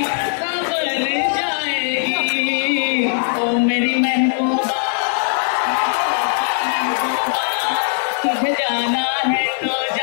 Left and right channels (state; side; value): silent; right; digital silence